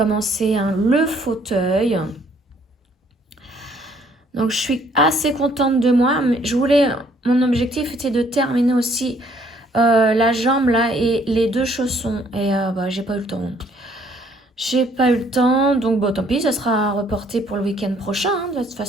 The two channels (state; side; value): normal; both; correlation 0.63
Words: le fauteuil. Donc je suis assez contente de moi. Mais mon objectif était de terminer aussi la jambe là et les 2 chaussons. Et j'ai pas eu le temps. J'ai pas eu le temps. Donc bon, tant pis, ça sera reporté pour le week-end prochain, hein. De toute